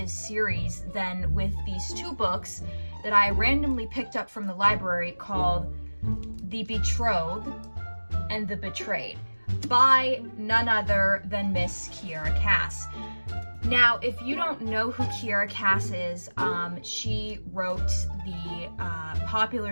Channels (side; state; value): both; inverted; correlation -1.00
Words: series than with these two books that I randomly picked up from the library called The Betrothed and The Betrayed by none other than Miss Kiera Cass. Now, if you don't know who Kiera Cass is, she wrote the